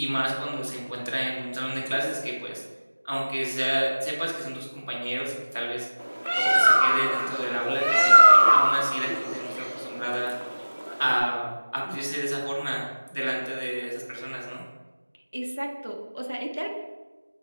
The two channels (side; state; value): both; inverted; correlation -1.00